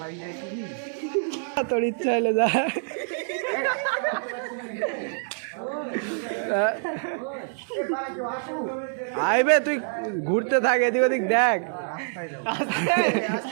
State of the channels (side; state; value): left; silent; digital silence